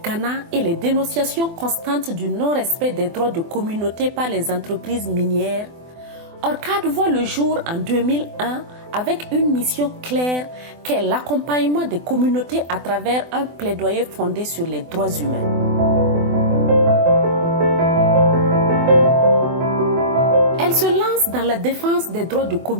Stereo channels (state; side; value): late; left; 24 ms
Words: Ghana et les dénonciations constantes du non-respect des droits de communauté par les entreprises minières, ORCAD voit le jour en 2001 avec une mission claire qu'est l'accompagnement des communautés à travers un plaidoyer fondé sur les droits humains. Elle se lance dans la défense des droits de